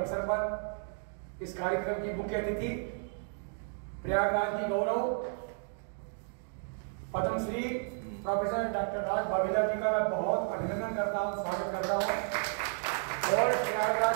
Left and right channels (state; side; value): silent; left; 56 dB below the other